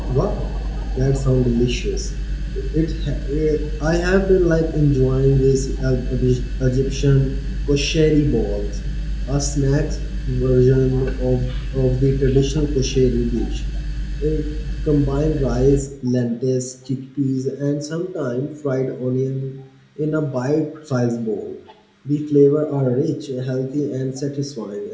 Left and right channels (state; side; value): identical; both; correlation 1.00